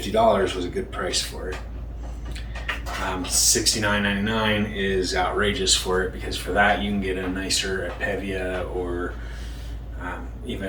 was a good price for it. $69.99 is outrageous for it, because for that you can get a nicer Pevia, or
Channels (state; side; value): identical; both; correlation 1.00